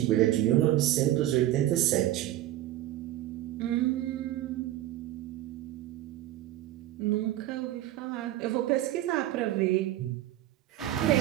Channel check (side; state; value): left; quieter; 14.1 dB